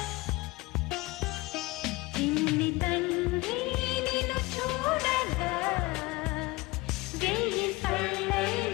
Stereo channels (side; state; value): right; quieter; 22.1 dB